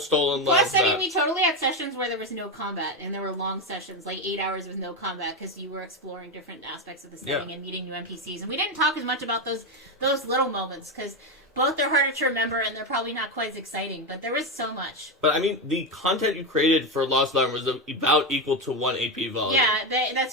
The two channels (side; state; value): both; normal; correlation 0.11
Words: Lands Plus, map. we totally had sessions where there was no combat, and there were long sessions, like 8 hours with no combat, because you were exploring different aspects of the setting and meeting new NPCs. And we didn't talk as much about those little moments, because both are harder to remember, and they're probably not quite as exciting, but there was so much. But, I mean, the content you created for Lost Larn was about equal to 1 AP volume. Yeah,